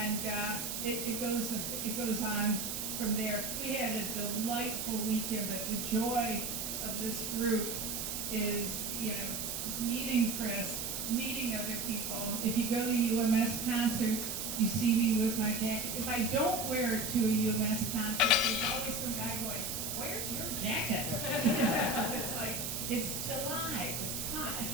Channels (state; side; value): noise; right; hiss, 3 dB below the sound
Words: it goes on from there. We had a delightful weekend, but the joy of this group is, meeting Chris, meeting other people. If you go to UMS concerts, you see me with my jacket. If I don't wear it to a UMS concert, there's always some guy going, where's your jacket? It's like, it's July, it's hot.